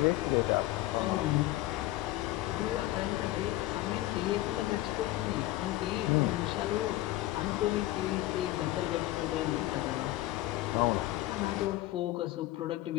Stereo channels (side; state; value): right; quieter; 16.7 dB